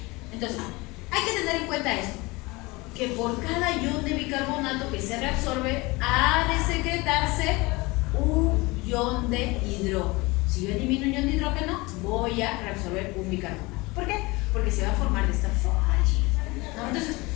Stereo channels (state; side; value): quieter; right; 23.7 dB